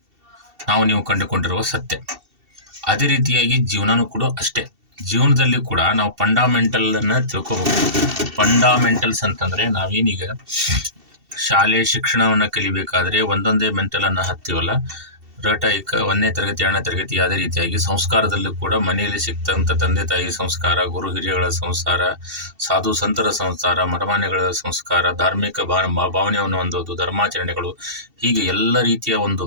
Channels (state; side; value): late; left; 2.7 ms